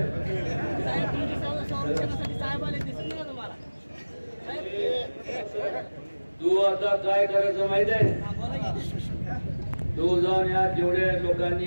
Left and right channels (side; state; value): both; inverted; correlation -1.00